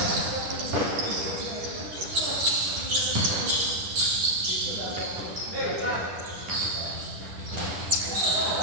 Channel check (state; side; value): late; left; 10 ms